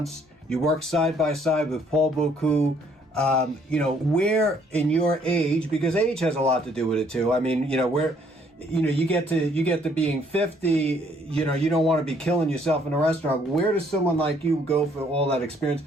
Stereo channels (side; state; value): both; normal; correlation 0.65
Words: You work side by side with Paul Bocuse. Where in your age, because age has a lot to do with it too. I mean, where, you get to being 50, you don't want to be killing yourself in a restaurant. Where does someone like you go for all that experience?